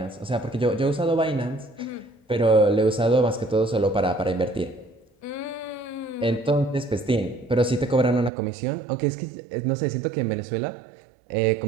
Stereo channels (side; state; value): left; drops out; at 8.3 s